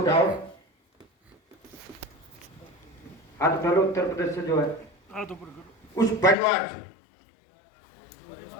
हाथ उठा लो, उत्तर प्रदेश से जो है उस परिवार से,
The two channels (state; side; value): drops out; right; at 6.4 s